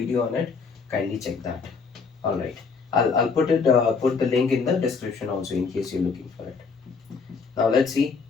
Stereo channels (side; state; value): right; quieter; 5.0 dB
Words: on it. Kindly check that. All right. I'll put it put the link in the description also in case you're looking for it. Now let's see.